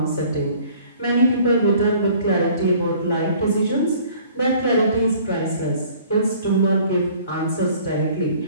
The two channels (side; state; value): both; inverted; correlation -0.54